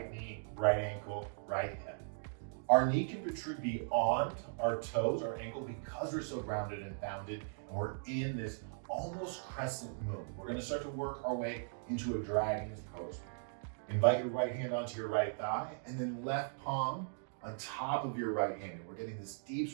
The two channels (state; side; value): silent; left; digital silence